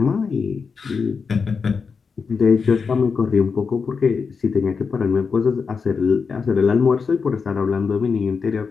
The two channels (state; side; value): quieter; right; 5.4 dB